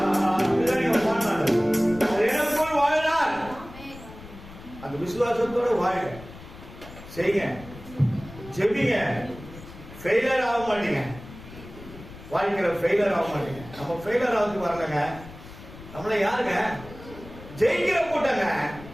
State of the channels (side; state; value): left; noise; rumble, 16 dB below the sound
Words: எனக்குள் வாழ்கிறார். அந்த விசுவாசத்தோட வாழுங்க, செய்யுங்க, ஜெபிங்க. ஃபெயிலியர் ஆக மாட்டீங்க, வாழ்க்கையில ஃபெயிலியர் ஆக மாட்டீங்க. நம்ம ஃபெயிலியர் ஆகுது வரலங்க, நம்மள யாருங்க? ஜெயிக்கிற கூட்டங்க,